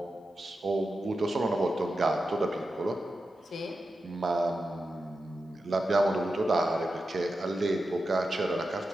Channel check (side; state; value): both; normal; correlation 0.90